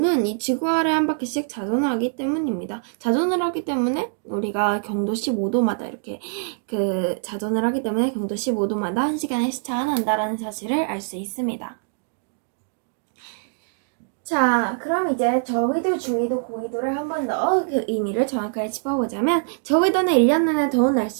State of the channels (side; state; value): left; silent; digital silence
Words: 이 지구아래 한 바퀴씩 자전을 하기 때문입니다. 자전을 하기 때문에 우리가 경도 15도마다 이렇게 자전을 하기 때문에 경도 15도마다 1시간의 시차가 난다라는 사실을 알 수 있습니다. 자, 그럼 이제 저위도, 중위도, 고위도를 한 번 더 그 의미를 정확하게 짚어보자면 저위도는 1년 내내 더운